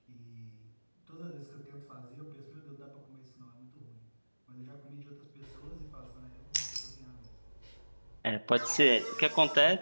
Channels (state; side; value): inverted; both; correlation -1.00